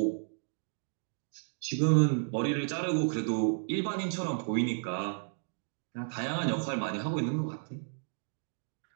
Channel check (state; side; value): silent; left; digital silence